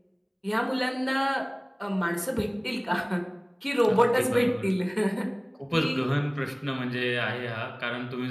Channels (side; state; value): both; identical; correlation 1.00